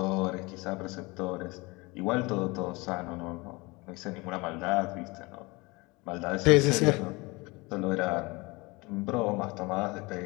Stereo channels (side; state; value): right; quieter; 24.7 dB